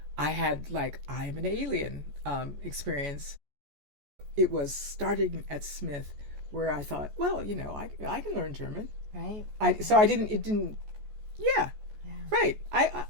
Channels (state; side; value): late; left; 14 ms